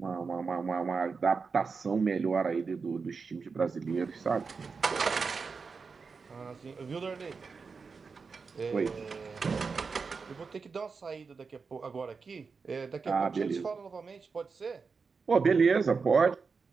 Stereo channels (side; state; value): left; quieter; 5.0 dB